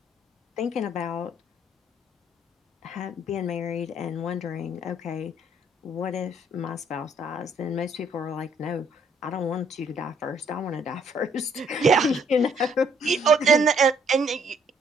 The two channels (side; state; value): both; normal; correlation 0.65